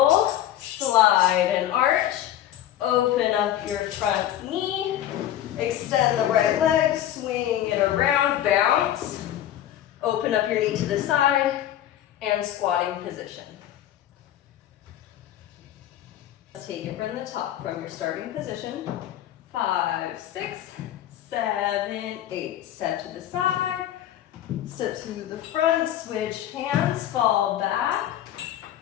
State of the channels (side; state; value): right; quieter; 12.1 dB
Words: slide and arch, open up your front knee, extend the right leg, swing it around, bounce, open up your knee to the side, and squatting position. Let's take it from the top, from your starting position. 5, 6, 7, 8. Step to the side, step to the front, switch hands, fall back,